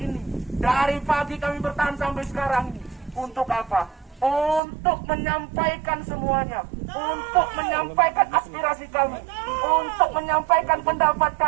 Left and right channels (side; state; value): left; drops out; at 4.6 s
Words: Dari pagi kami bertahan sampai sekarang ini. Untuk apa? Untuk menyampaikan semuanya. Untuk menyampaikan aspirasi kami. Untuk menyampaikan pendapat